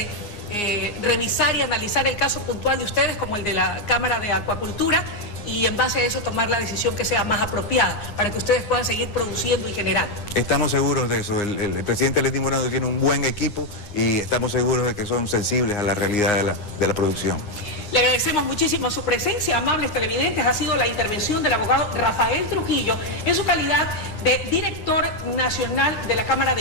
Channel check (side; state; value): right; late; 9.6 ms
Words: revisar y analizar el caso puntual de ustedes como el de la Cámara de Acuacultura y en base a eso tomar la decisión que sea más apropiada para que ustedes puedan seguir produciendo y generando. Estamos seguros de eso. El presidente Lenín Moreno tiene un buen equipo y estamos seguros de que son sensibles a la realidad de la producción. Le agradecemos muchísimo su presencia, amables televidentes. Ha sido la intervención del abogado Rafael Trujillo en su calidad de director nacional de la Cámara